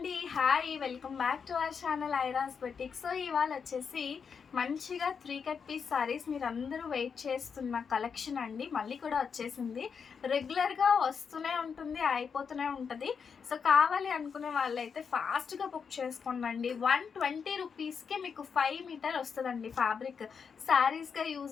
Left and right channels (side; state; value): right; quieter; 6.3 dB